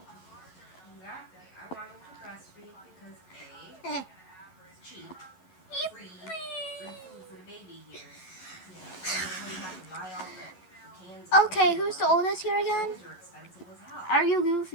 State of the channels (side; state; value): right; late; 11 ms